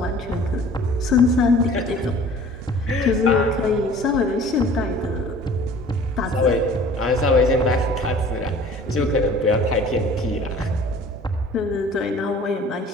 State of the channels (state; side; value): normal; both; correlation 0.48